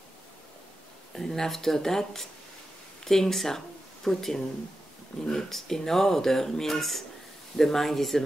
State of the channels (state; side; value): normal; both; correlation 0.91